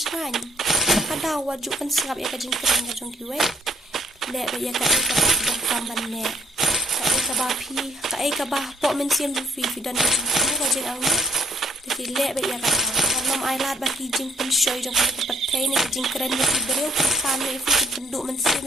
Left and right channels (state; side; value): normal; both; correlation 0.64